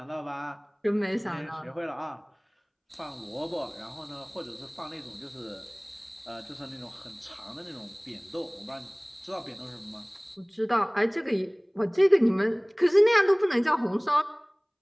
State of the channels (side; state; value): both; identical; correlation 1.00